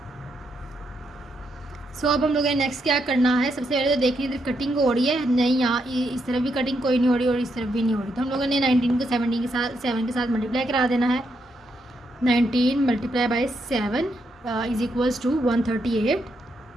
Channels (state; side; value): normal; both; correlation 0.79